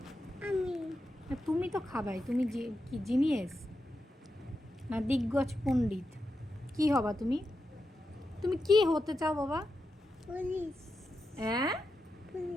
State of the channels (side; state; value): both; normal; correlation 0.88